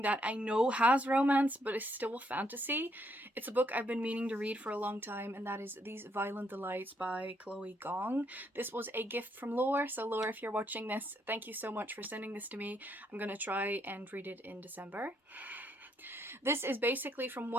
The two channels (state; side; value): normal; both; correlation 0.73